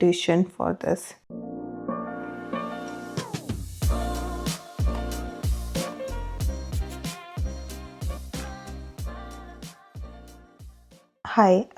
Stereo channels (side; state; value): both; identical; correlation 1.00